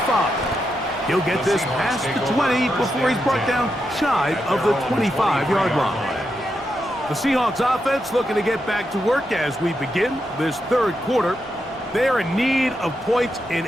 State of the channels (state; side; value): normal; both; correlation 0.85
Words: He'll get this past the 20 before he's brought down shy of the 25-yard line. The Seahawks offense looking to get back to work as we begin this third quarter. They are in need of points in